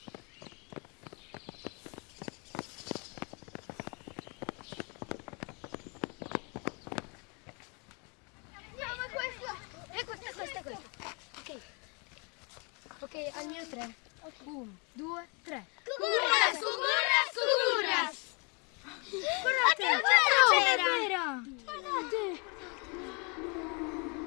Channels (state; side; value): quieter; right; 32.8 dB